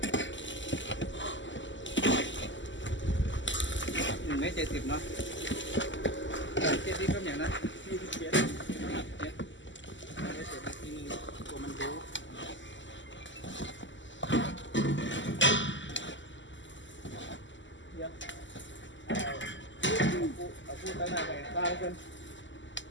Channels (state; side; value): late; right; 0.54 ms